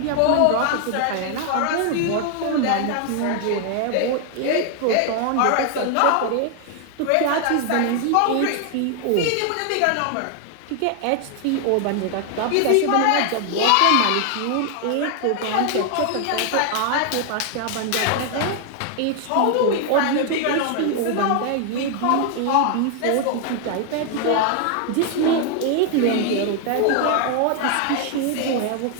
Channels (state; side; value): different; both; correlation 0.00